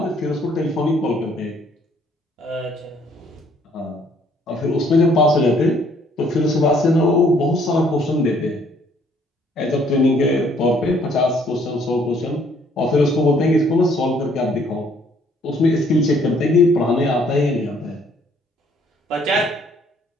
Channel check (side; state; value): both; normal; correlation 0.63